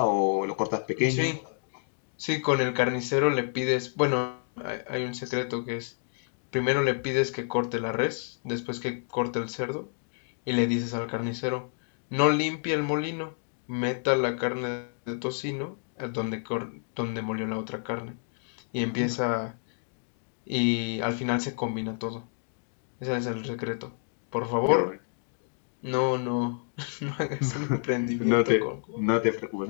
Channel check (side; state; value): right; silent; 58 dB below the other